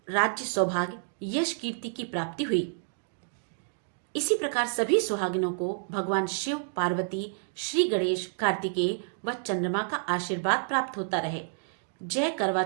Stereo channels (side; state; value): left; silent; digital silence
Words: राज्य, सौभाग्य, यश, कीर्ति की प्राप्ति हुई। इसी प्रकार सभी सुहागिनों को भगवान शिव, पार्वती, श्री गणेश, कार्तिकेय व चंद्रमा का आशीर्वाद प्राप्त होता रहे। जय करवा